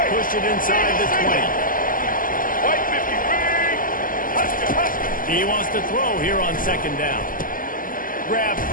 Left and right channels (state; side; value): late; right; 0.41 ms